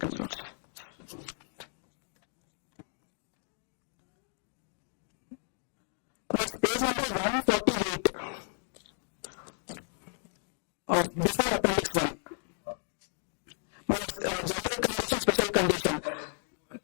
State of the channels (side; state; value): right; silent; digital silence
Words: my lords. Page number 148. Before appendix 1. General condition, special condition.